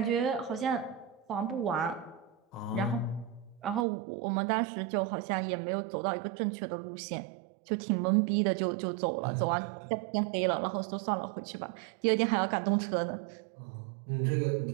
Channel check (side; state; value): left; drops out; at 3.9 s